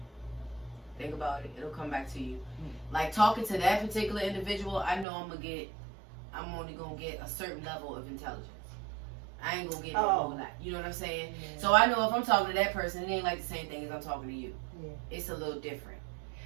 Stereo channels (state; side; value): drops out; left; at 5.1 s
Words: Think about it; it'll come back to you. Like talking to that particular individual, I know I'm only gonna get a certain level of intelligence. I ain't gonna get no whole lot. You know what I'm saying? Yeah. So I know if I'm talking to that person, it ain't like the same thing as I'm talking to you. Yeah. It's a little different.